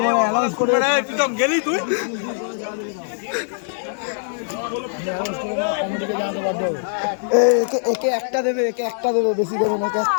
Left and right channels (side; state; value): right; silent; 61 dB below the other